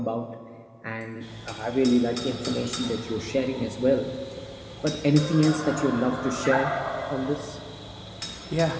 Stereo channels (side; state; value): both; identical; correlation 1.00